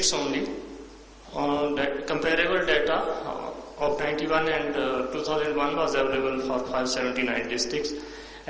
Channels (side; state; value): both; identical; correlation 1.00